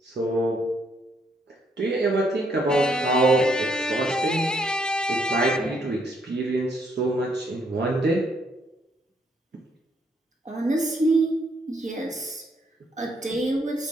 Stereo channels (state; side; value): normal; both; correlation 0.72